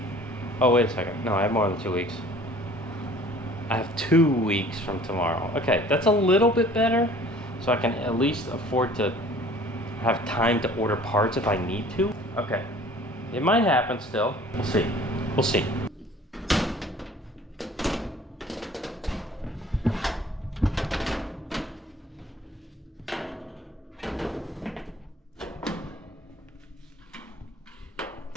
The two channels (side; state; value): both; normal; correlation 0.50